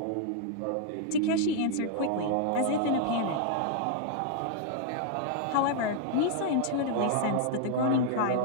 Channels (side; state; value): both; different; correlation 0.00